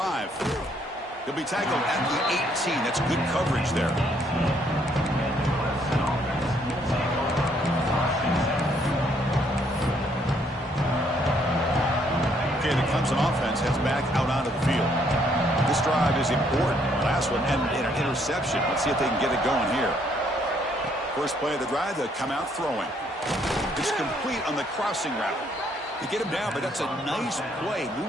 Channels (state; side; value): normal; both; correlation 0.68